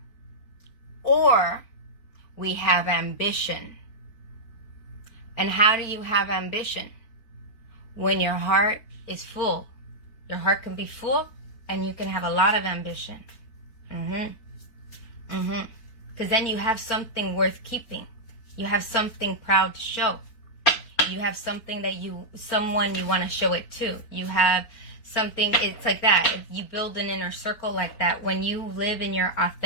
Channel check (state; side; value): late; right; 4.2 ms